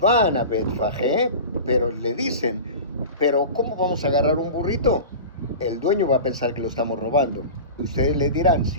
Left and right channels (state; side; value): inverted; both; correlation -0.32